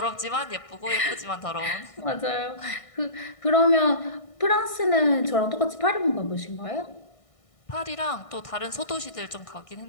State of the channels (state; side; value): late; right; 1.6 ms